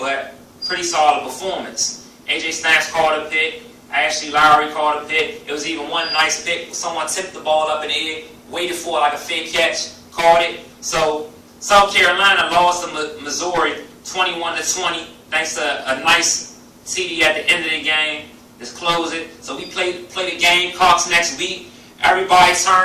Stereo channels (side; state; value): both; identical; correlation 1.00